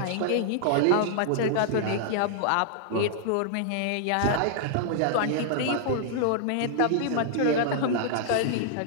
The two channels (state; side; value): different; both; correlation -0.01